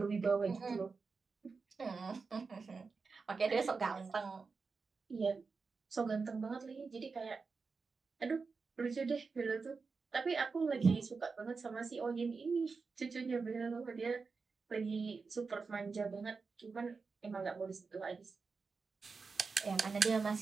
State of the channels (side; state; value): left; quieter; 4.7 dB